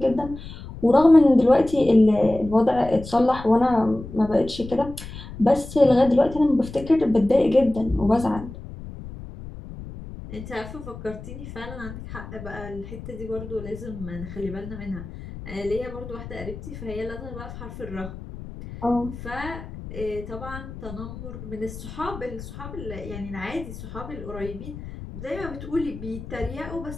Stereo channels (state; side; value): noise; left; rumble, 12 dB below the sound